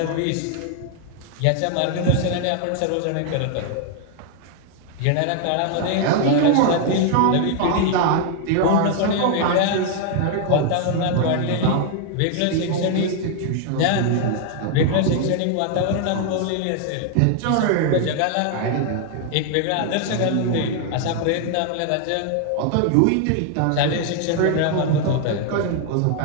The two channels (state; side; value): different; both; correlation 0.00